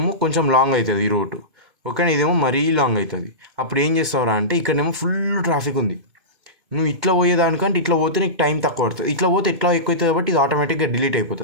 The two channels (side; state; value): left; late; 2.0 ms